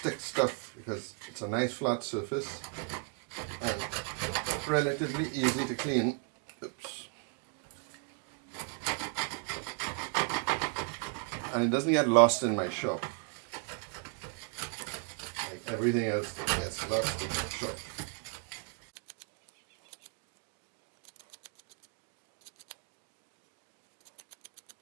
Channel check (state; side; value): quieter; left; 40.0 dB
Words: stuff because it's a nice flat surface and relatively easy to clean. Oops. And it doesn't get lost in my shop like everything else that gets lost in my shop.